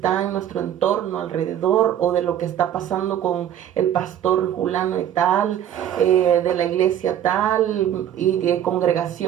en nuestro entorno alrededor, o de lo que está pasando con el pastor fulano y tal, de la iglesia tal y de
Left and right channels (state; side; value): quieter; left; 10.5 dB